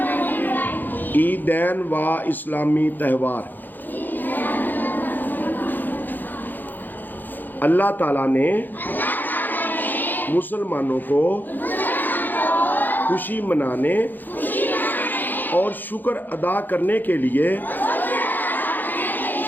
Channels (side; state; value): right; late; 0.087 ms